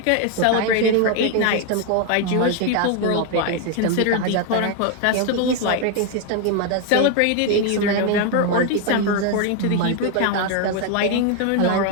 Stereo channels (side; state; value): both; different; correlation 0.01